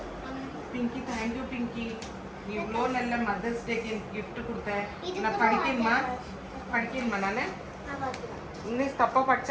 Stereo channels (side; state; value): both; identical; correlation 1.00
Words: பிங்கி தேங்க்யூ பிங்கி. நீ இவ்வளோ நல்ல மதர்ஸ் டேக்கு கிஃப்ட் கொடுத்த. நான் படிக்கணுமா நான் இன்னும் தப்பாக